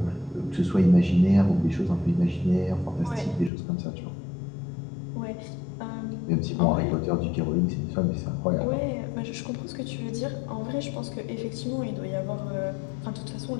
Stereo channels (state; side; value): drops out; right; at 3.5 s